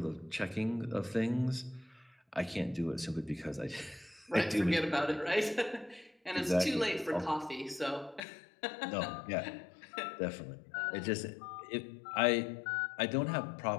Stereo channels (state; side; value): drops out; right; at 8.2 s